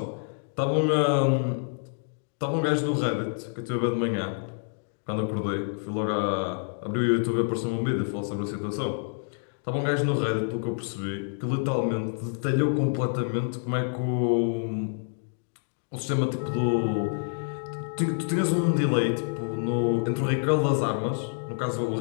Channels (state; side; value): silent; right; digital silence